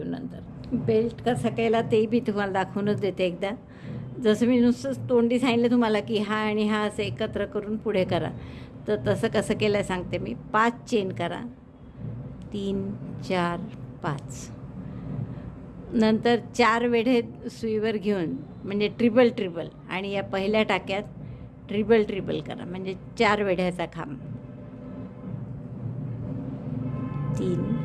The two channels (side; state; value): both; identical; correlation 1.00